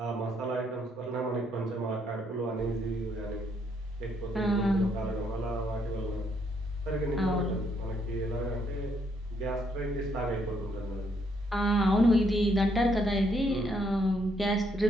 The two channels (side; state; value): both; normal; correlation 0.72